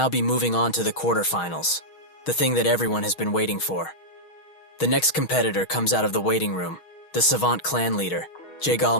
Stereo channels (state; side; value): late; right; 6.3 ms